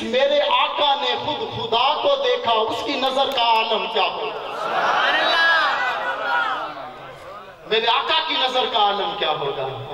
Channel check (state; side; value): identical; both; correlation 1.00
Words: میرے آقا نے خود خدا کو دیکھا، اس کی نظر کا عالم کیا ہوگا؟ میرے آقا کی نظر کا عالم کیا ہوگا؟